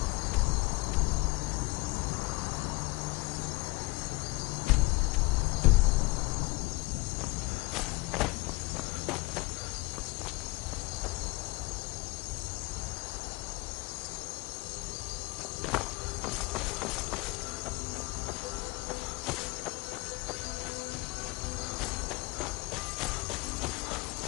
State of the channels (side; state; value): right; quieter; 22.8 dB